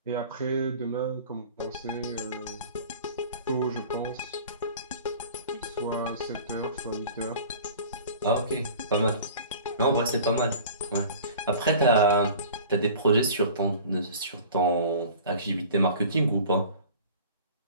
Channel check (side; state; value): both; inverted; correlation -0.43